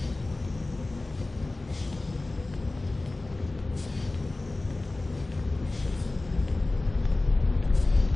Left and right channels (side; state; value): right; quieter; 3.0 dB